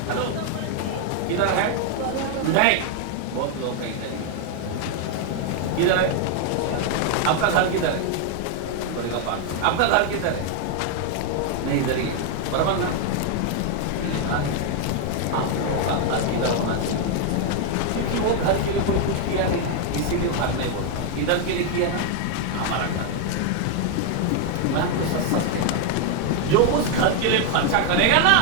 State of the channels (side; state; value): both; different; correlation 0.00